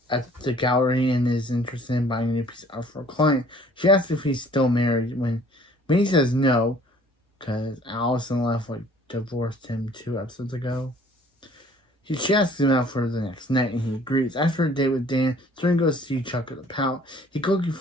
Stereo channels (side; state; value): both; normal; correlation 0.55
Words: gallery and is interested in buying a new piece of art for a client. She asks if he's still married when he says no, because Allison divorced him 2 episodes ago. She asks him out for the next night, and he agrees. After a date with Dan, Serena goes to see Chuck at the pout. He quickly